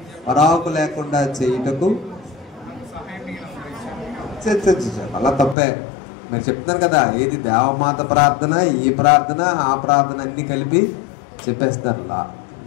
పరాకు లేకుండా చేయుటకు అలా తప్పే. మీరు చెప్తున్నారు కదా, ఏది దేవమాత ప్రార్థన, ఈ ప్రార్థన, ఆ ప్రార్థన అన్ని కలిపి చెప్పేస్తారు.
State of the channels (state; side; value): drops out; right; at 5.6 s